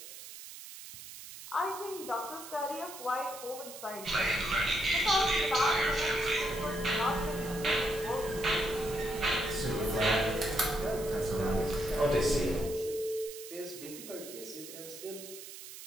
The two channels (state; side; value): noise; right; hiss, 13 dB below the sound